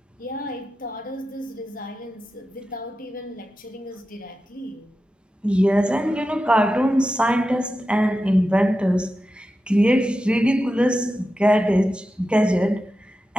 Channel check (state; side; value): normal; both; correlation 0.91